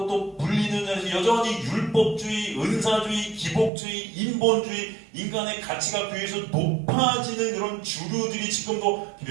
또 불리는 자들이 여전히 율법주의, 은사주의, 기복주의, 인본주의, 인간의 가치가 교회에서 높아지는 그런 주류들이 지금도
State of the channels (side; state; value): left; drops out; at 3.7 s